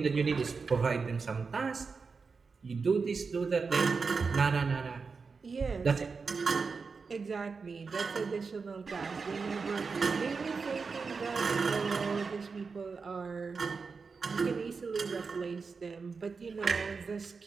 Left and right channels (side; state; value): left; quieter; 4.9 dB